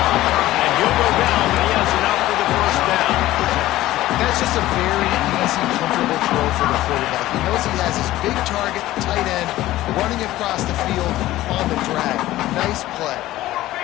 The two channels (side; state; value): right; quieter; 15.8 dB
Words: And he'll go down, but he has enough for the first down. That's just a very easy, comfortable throw for the quarterback. He knows he has his big target, tight end, running across the field on the drag. Nice play.